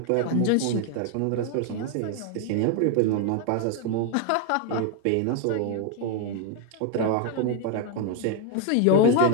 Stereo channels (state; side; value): different; both; correlation 0.01